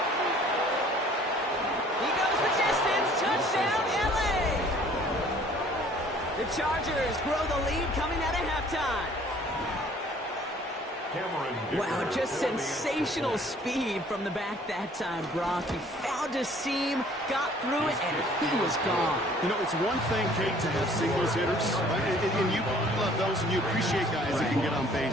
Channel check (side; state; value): both; normal; correlation 0.55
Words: He goes the distance. Touchdown, LA. The Chargers grow the lead coming out of halftime. Wow, just sensational speed from the back that time, Brock. He found a seam, got through it, and he was gone. You know, it's one thing, Kate, to have singles hitters, right? And you love those and you appreciate guys that can get on